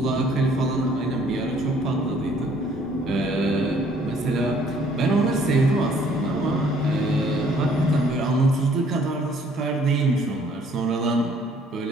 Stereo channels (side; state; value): both; normal; correlation 0.61